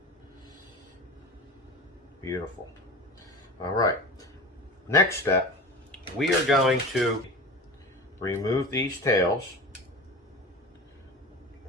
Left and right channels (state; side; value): normal; both; correlation 0.32